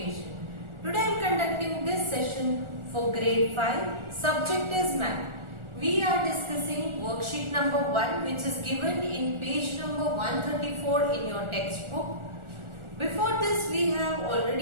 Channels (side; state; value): left; late; 1.4 ms